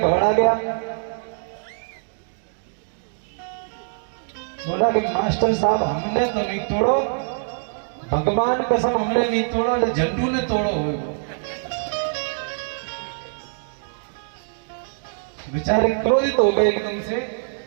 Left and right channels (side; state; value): left; silent; digital silence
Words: गया, बोला कि मास्टर साहब हमने तो नहीं तोड़ो, भगवान कसम हमने नहीं तोड़ा, झंडू ने तोड़ो हो। बेचारे क्रोधित हो गए एकदम से।